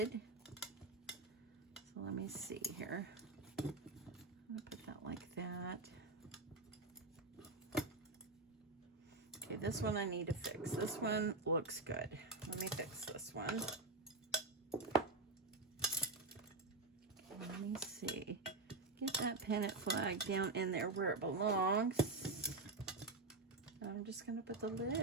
So let me see here. I'm gonna put that like that. Okay, this one I need to fix. This one looks good. Let me fix this one. Let me see. Get that pennant flag down in there where it belongs. I'm just going to put the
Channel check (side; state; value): left; quieter; 3.3 dB